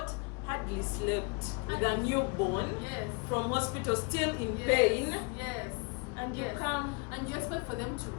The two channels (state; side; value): quieter; right; 32.4 dB